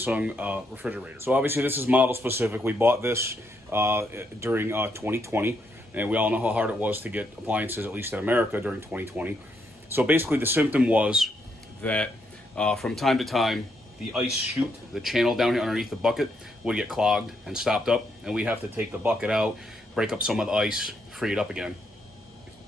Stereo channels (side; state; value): both; normal; correlation 0.77